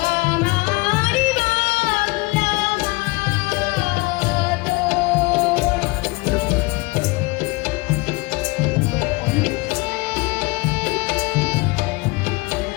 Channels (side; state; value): right; quieter; 24.9 dB